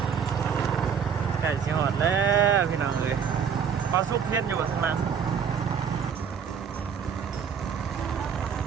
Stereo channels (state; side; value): quieter; left; 7.2 dB